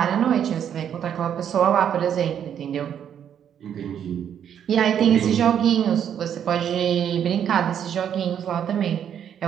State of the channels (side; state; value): left; quieter; 9.0 dB